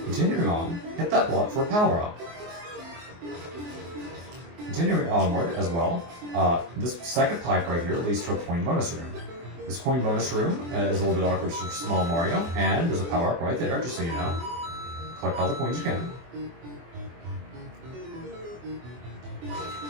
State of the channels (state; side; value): late; left; 24 ms